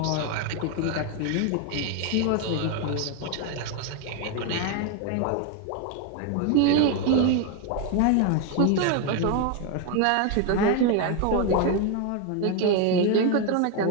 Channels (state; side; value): different; both; correlation 0.01